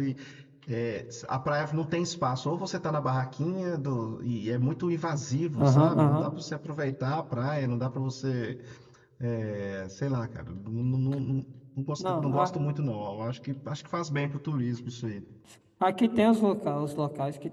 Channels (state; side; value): identical; both; correlation 1.00